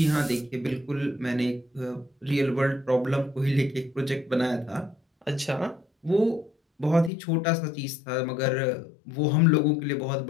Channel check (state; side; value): drops out; right; at 7.1 s